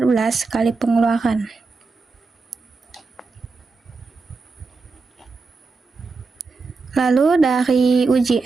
kali pengeluaran. Lalu dari uji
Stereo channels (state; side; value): quieter; left; 4.2 dB